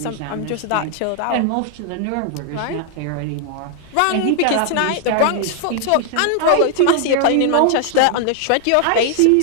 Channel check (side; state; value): both; different; correlation 0.00